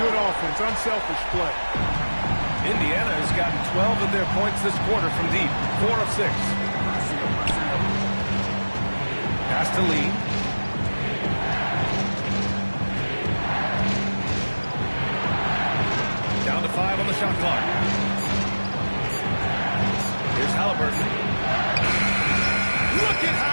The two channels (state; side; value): inverted; both; correlation -1.00